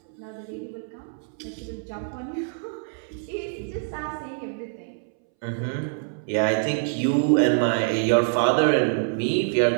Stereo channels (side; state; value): left; silent; 61 dB below the other